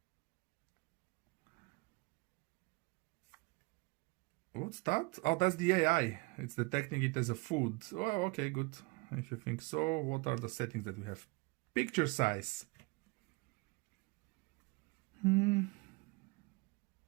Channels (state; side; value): quieter; left; 26.2 dB